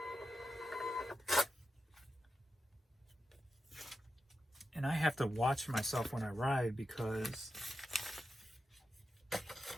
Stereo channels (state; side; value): normal; both; correlation 0.89